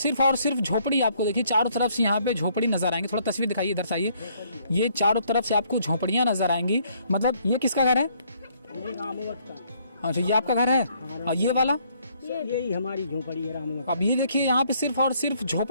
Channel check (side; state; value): both; inverted; correlation -0.66